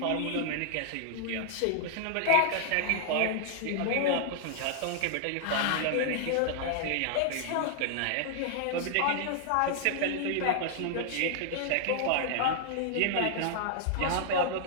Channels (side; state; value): both; different; correlation -0.01